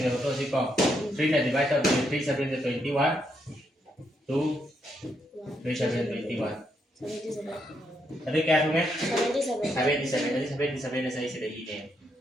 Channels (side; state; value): both; normal; correlation 0.78